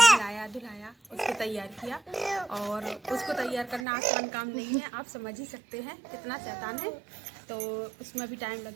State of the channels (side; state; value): left; drops out; at 3.9 s